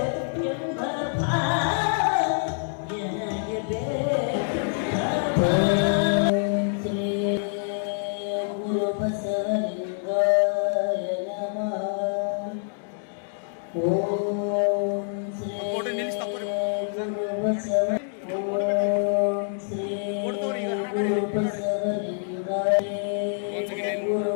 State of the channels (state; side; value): silent; right; digital silence